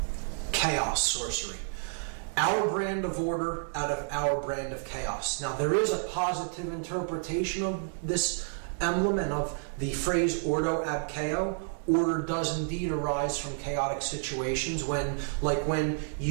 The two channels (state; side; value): silent; left; digital silence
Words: chaos, sorcery. Our brand of order out of our brand of chaos. Now, there is a positive interpretation of this emblem and of the phrase Ordo ab Chao. Order does indeed arise from chaotic situations when